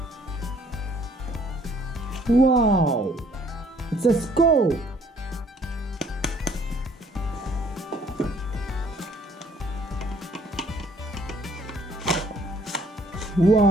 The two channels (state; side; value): normal; both; correlation 0.61